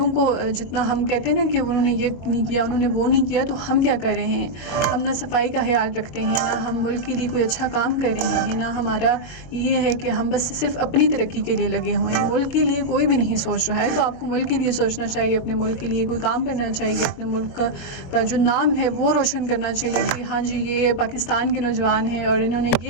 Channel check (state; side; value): late; right; 22 ms